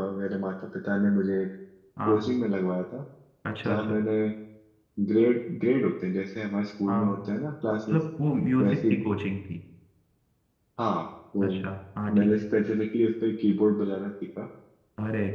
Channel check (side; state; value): both; identical; correlation 1.00